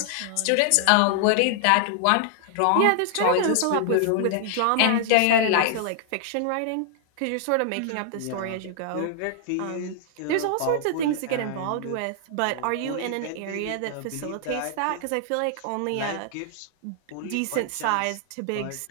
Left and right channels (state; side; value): different; both; correlation 0.00